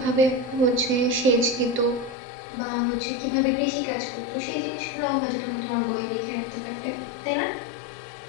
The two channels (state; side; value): drops out; right; at 2.1 s